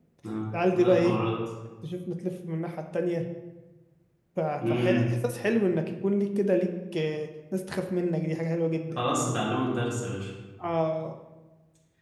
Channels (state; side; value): identical; both; correlation 1.00